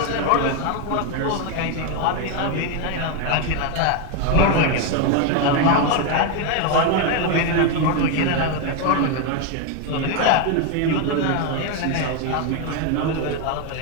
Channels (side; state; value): both; different; correlation 0.01